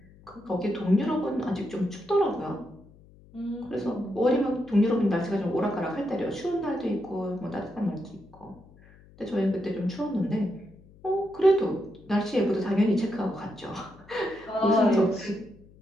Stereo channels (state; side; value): noise; left; hum, 25 dB below the sound